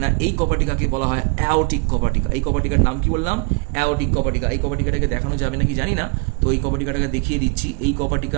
না, এই কপাটিকাকে বলা হয় অ্যাওটিক কপাটিকা। এই কপাটিকার নাম কি বললাম? অ্যাওটিক কপাটিকা। এই কপাটিকাটাকে দেখানো যাবে নাকি জানি না, তো এই কপাটিকাটাকে দেখিয়ে দিচ্ছি। এই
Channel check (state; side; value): quieter; left; 31.5 dB